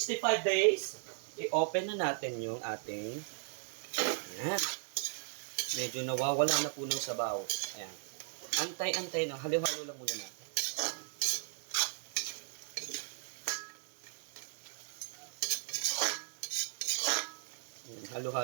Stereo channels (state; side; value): silent; left; 53 dB below the other